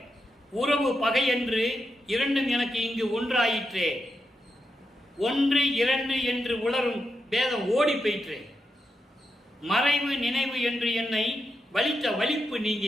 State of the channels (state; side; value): normal; both; correlation 0.85